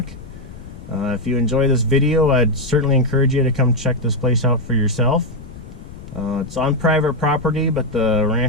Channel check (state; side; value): noise; left; rumble, 15 dB below the sound